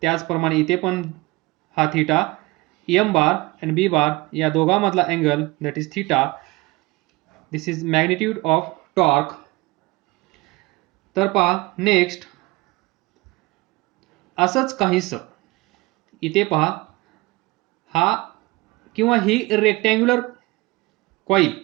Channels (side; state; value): left; quieter; 22.6 dB